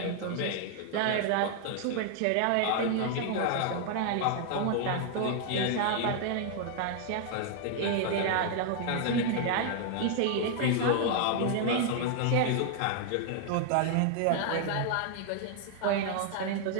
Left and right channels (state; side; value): different; both; correlation 0.00